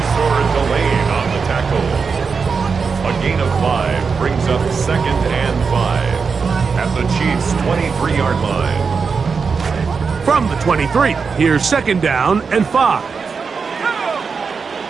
Delane on the tackle. A gain of 5 brings up 2nd and 5 at the Chiefs' 23-yard line. From the 23, here's 2nd down and 5.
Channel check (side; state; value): left; quieter; 5.3 dB